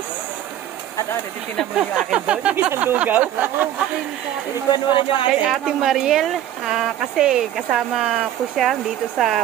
At ate, titignan mo yung akin doon, yung isang lugaw. Ikuan mo rin yung Kay Ate Mariel, kasi kasama ko siya dito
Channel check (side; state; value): left; quieter; 11.8 dB